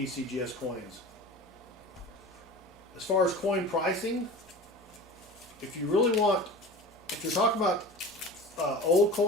coins. As far as coin pricing, if you're talking about old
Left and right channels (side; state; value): both; normal; correlation 0.35